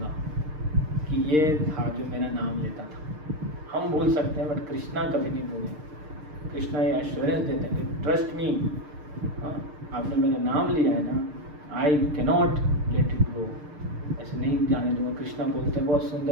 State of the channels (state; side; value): late; left; 6.6 ms